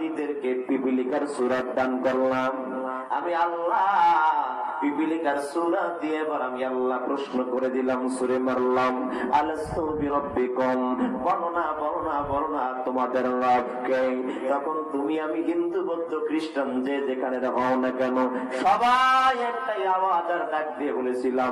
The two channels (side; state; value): both; identical; correlation 1.00